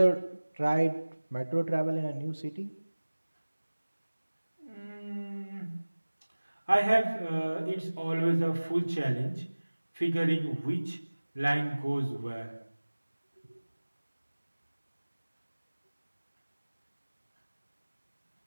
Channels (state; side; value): inverted; both; correlation -1.00